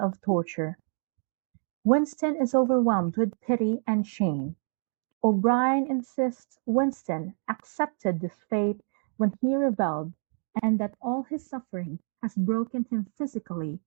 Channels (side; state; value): left; silent; 59 dB below the other